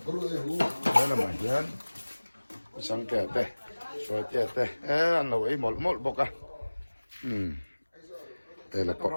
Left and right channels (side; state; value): both; inverted; correlation -1.00